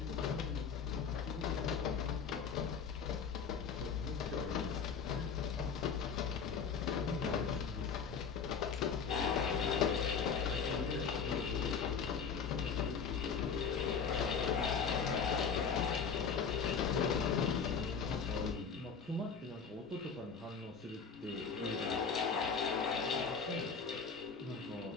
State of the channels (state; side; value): quieter; right; 6.1 dB